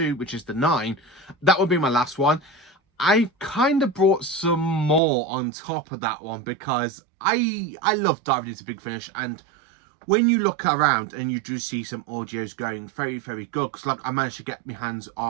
which is the 9, that would be my last one. I kind of brought some more on top of that one because I love diving into Big Finish, and when you look around and you do see some audios going very, very good, because like I managed to get my hands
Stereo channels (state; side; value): drops out; left; at 5.0 s